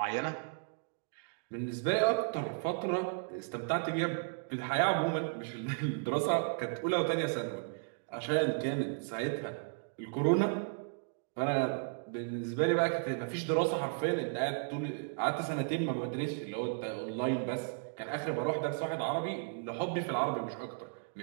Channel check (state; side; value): silent; left; digital silence